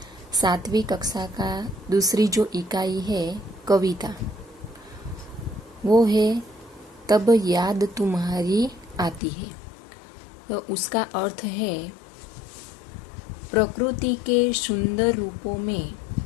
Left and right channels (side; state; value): right; drops out; at 9.2 s